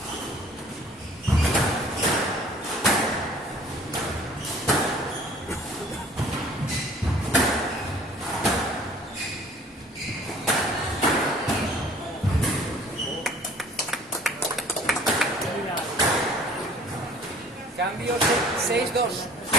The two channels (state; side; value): normal; both; correlation 0.52